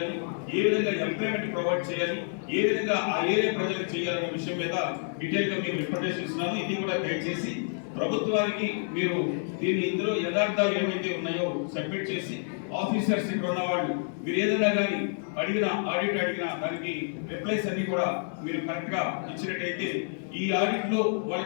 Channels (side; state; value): right; silent; 59 dB below the other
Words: ఏ విధంగా ఎంప్లాయ్మెంట్ ప్రొవైడ్ చేయాలి, ఏ విధంగా ఆ ఏరియా ప్రజలకు చేయాలనే విషయం మీద డీటెయిల్ గా మేము రిప్రజెంటేషన్ ఇస్తున్నాను. ఇది కూడా దయచేసి ప్రభుత్వానికి మీరు దీన్ని ఇందులో యథార్థాలు ఏమైతే ఉన్నాయో సబ్మిట్ చేసి ఆఫీసర్స్ ఇక్కడ ఉన్న వాళ్ళు మీరు ఏదైనా కానీ అడిగినా ఆడిట్ అడిగినా దానికి రిప్లైస్ అన్ని కూడా మీరు కరెక్ట్ గా ఇచ్చినట్టయితే ఈ ఆడిట్ లో